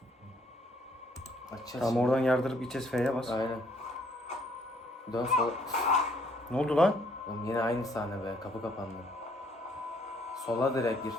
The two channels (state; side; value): normal; both; correlation 0.65